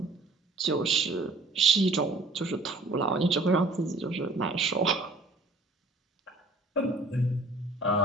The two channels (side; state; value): left; quieter; 3.2 dB